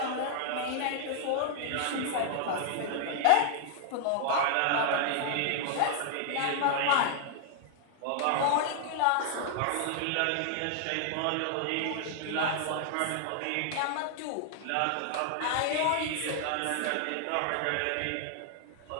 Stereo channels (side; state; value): both; different; correlation -0.01